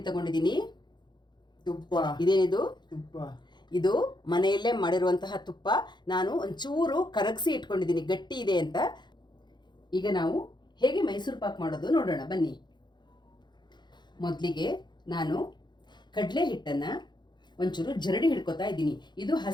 ತಗೊಂಡಿದ್ದೀನಿ. ತುಪ್ಪ. ಇದೇನಿದು? ತುಪ್ಪ. ಇದು ಮನೆಯಲ್ಲೇ ಮಾಡಿರುವಂತಹ ತುಪ್ಪ. ನಾನು ಒಂಚೂರು ಕರಗಿಸಿ ಇಟ್ಕೊಂಡಿದ್ದೀನಿ, ಗಟ್ಟಿ ಇದೆ ಅಂತ. ಈಗ ನಾವು ಹೇಗೆ ಮೈಸೂರು ಪಾಕ್ ಮಾಡೋದು ನೋಡೋಣ ಬನ್ನಿ. ಮೊದಲಿಗೆ ನಾನು ಕಡಲೆ ಹಿಟ್ಟನ್ನು ಒಂಚೂರು ಜರಡಿ ಹಿಡ್ಕೊತಾ ಇದ್ದೀನಿ. ಇದು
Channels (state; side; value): late; right; 0.21 ms